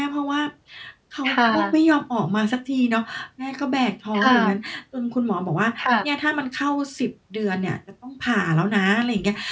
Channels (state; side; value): identical; both; correlation 1.00